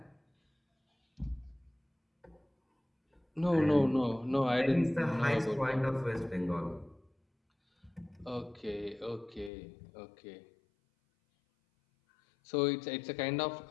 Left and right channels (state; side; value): drops out; right; at 9.5 s